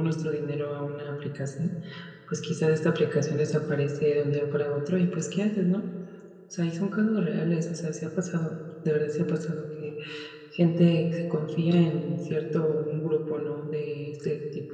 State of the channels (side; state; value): both; identical; correlation 1.00